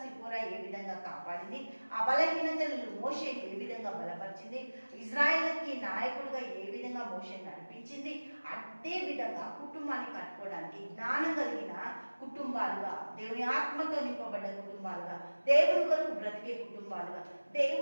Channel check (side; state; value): both; inverted; correlation -1.00